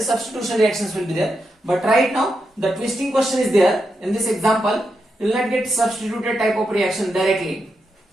substitution reactions will be there. But right now the twisting question is there. In this example, you will not get substituted type of reaction directly.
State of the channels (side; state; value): both; normal; correlation 0.85